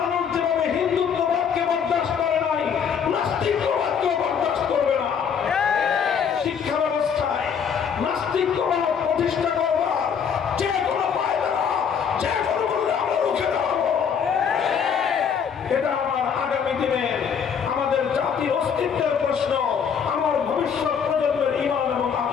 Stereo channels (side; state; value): right; quieter; 7.2 dB